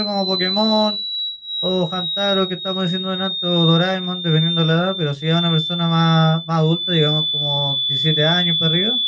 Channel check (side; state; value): both; identical; correlation 1.00